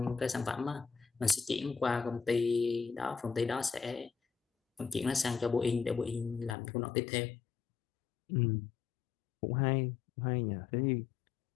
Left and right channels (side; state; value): right; drops out; at 6.6 s